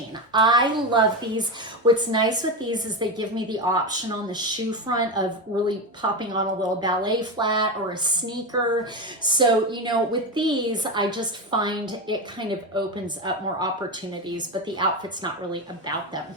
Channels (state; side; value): normal; both; correlation 0.16